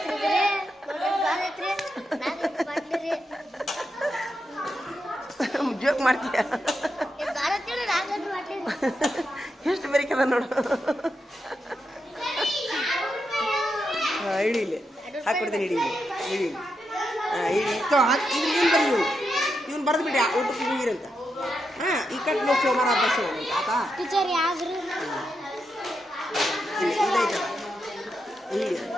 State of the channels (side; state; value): both; normal; correlation 0.85